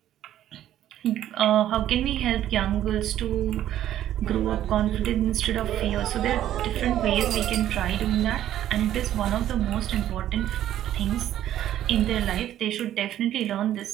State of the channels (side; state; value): left; quieter; 12.0 dB